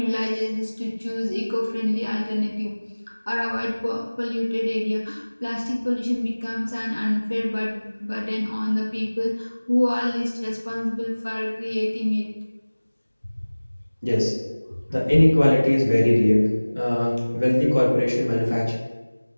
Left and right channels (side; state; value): both; inverted; correlation -1.00